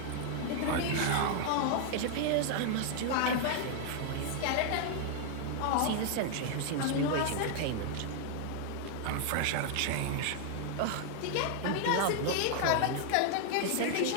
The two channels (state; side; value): different; both; correlation 0.00